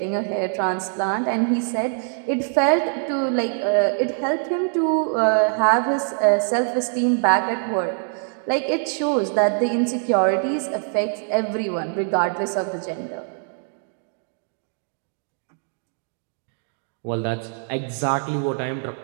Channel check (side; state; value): left; silent; 57 dB below the other